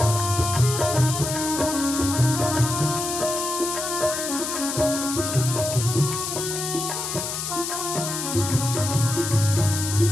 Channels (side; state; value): left; noise; hiss, 4 dB below the sound